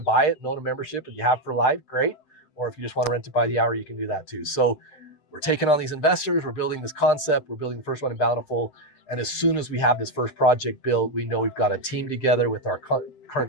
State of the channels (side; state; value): right; late; 7.8 ms